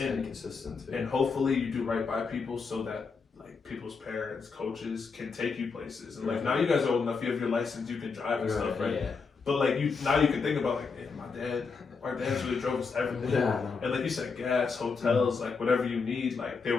consistent, too. And hopefully you do right by people so that like people's parents, coaches can take you places. And like now you guys are old enough, you have your license, you can drive and stuff, right? Yeah. But like now you can think about like, man, our dads really drove us everything. Yeah. And like you said, gas, hotels, like whatever you need, like they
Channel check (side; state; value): right; quieter; 5.0 dB